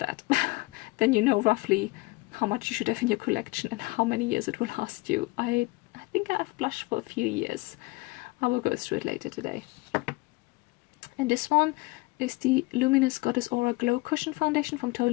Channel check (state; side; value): quieter; right; 23.6 dB